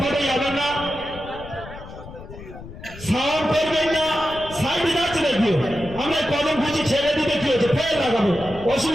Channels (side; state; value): left; noise; rumble, 15 dB below the sound